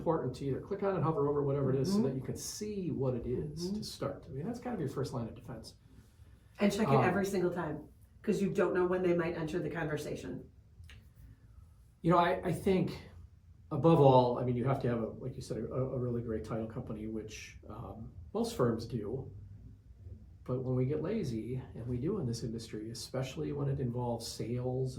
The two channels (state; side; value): identical; both; correlation 1.00